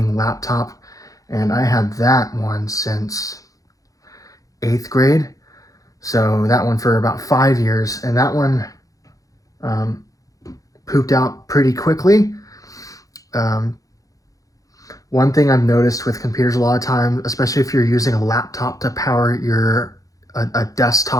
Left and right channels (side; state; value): right; late; 0.17 ms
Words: laptop, and I had that one since 8th grade. So that one for about 5 years, and that one pooped out pretty quickly. One thing I've noticed with computers a lot of times, especially if you're using a laptop to power a